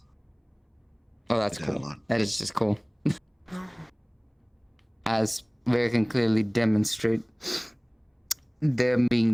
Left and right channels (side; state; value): both; identical; correlation 1.00